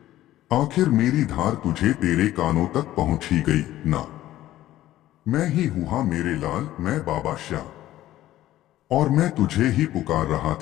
आखिर मेरी धार तुझे तेरे कानों तक पहुंच ही गई ना। मैं ही हूं मेरे लाल, मैं बाबा श्याम, और मैं तुझे ही पुकार रहा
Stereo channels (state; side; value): quieter; right; 14.4 dB